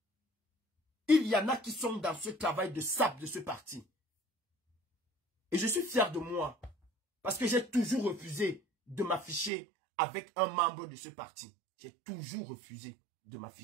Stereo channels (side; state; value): left; drops out; at 9.5 s